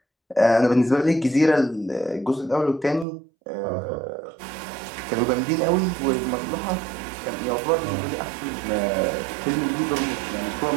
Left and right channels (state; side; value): drops out; left; at 3.1 s